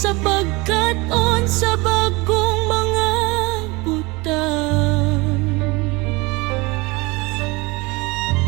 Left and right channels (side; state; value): left; quieter; 24.6 dB